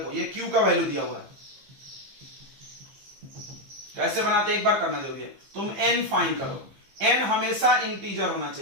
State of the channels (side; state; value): left; late; 15 ms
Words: ये Q का वैल्यू दिया हुआ है, कैसे बनाते एक बार करना जरूरी है। तुम n फाइंड करो, n हमेशा इंटीजर होना